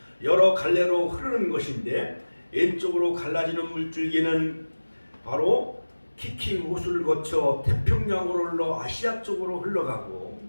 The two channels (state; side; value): inverted; both; correlation -1.00